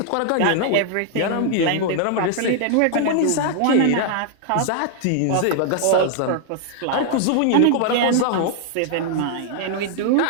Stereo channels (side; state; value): both; different; correlation 0.00